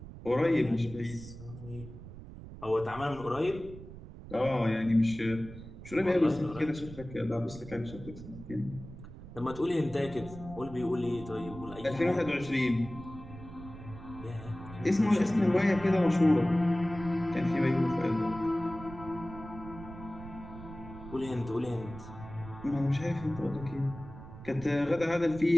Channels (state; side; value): noise; right; rumble, 14 dB below the sound